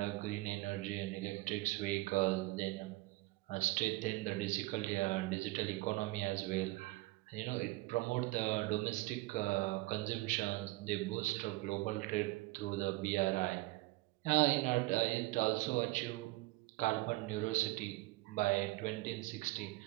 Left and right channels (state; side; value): quieter; left; 20.8 dB